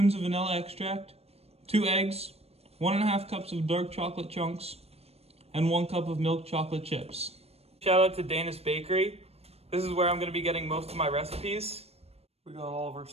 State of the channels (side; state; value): left; late; 0.29 ms